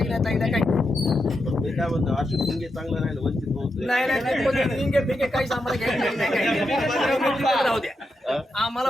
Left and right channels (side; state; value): both; normal; correlation 0.86